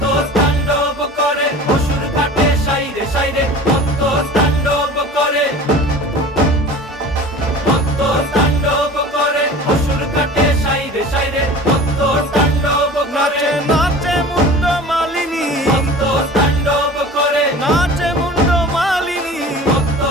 তাণ্ডব করে অসুর কাটে সাইরে সাইরে, মত্ত তাণ্ডব করে, মত্ত তাণ্ডব করে অসুর কাটে সাইরে সাইরে, মত্ত তাণ্ডব করে। নাচে মুন্ড মালিনী, মত্ত তাণ্ডব করে, নাচে মুন্ড মালিনী, মত্ত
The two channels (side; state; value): both; normal; correlation 0.40